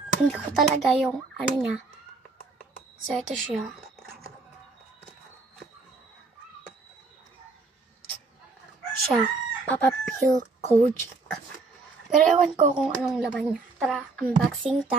hindi ko talaga yung ano niya. So ito siya. Papa Phil Kojic. Pero ewan ko kung anong laman niya. Tara, unboxing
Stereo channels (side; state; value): left; quieter; 3.8 dB